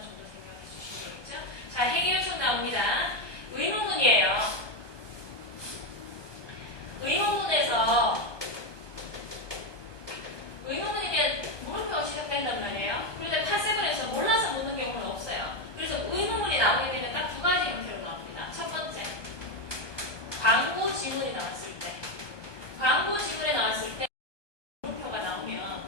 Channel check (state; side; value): late; right; 1.2 ms